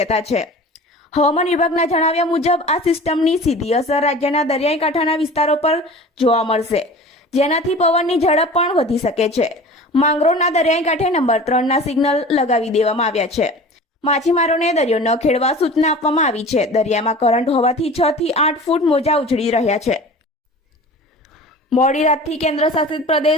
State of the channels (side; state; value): both; normal; correlation 0.39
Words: છે। હવામાન વિભાગના જણાવ્યા મુજબ આ સિસ્ટમની સીધી અસર રાજ્યના દરિયાઈ કાંઠાના વિસ્તારો પર જોવા મળશે, જેનાથી પવનની ઝડપ પણ વધી શકે છે। માંગરોળના દરિયાઈ કાંઠે નંબર 3ના સિગ્નલ લગાવી દેવામાં આવ્યા છે। માછીમારોને દરિયો ન ખેડવા સૂચના આપવામાં આવી છે। દરિયામાં કરંટ હોવાથી 6 થી 8 ફૂટ મોજા ઉછળી રહ્યા છે। મોડી રાતથી કેન્દ્ર શાસિત